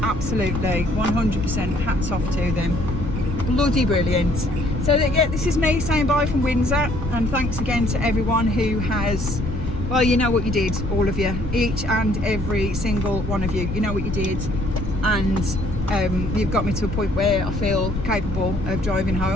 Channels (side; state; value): left; noise; rumble, 6 dB below the sound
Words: absolutely 100% hats off to them. Bloody brilliant. So yeah, this is me saying bye from Windsor, and thanks again to everyone who has, well, you know what you did, all of you, each and every single one of you, you know what you did, and you've got me to a point where I feel capable of driving